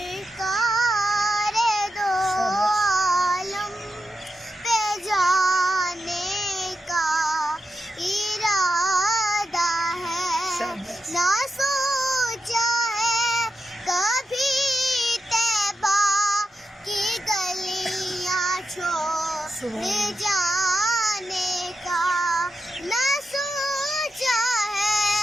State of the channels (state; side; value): normal; both; correlation 0.87